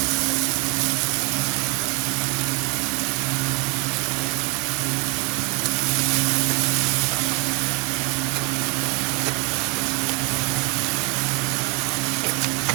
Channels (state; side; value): quieter; left; 23.8 dB